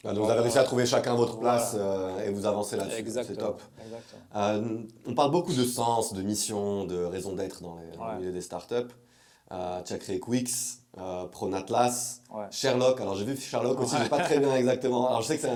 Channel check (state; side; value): identical; both; correlation 1.00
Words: Ah, donc vous avez réussi à trouver chacun votre place Voilà. et vous avancez là-dessus. C'est Exactement. top. Exactement. On parle beaucoup de sens, de mission, de raison d'être dans le Ouais. milieu des startups. Tu as créé Quix, Pronatlas, Ouais. Sherlock. Alors j'ai vu Sherlock aussi, Ouais. je sais pas très bien exactement. Alors je sais que c'est